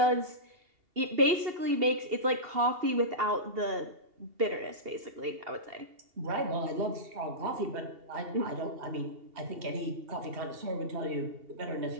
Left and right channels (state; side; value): late; left; 2.8 ms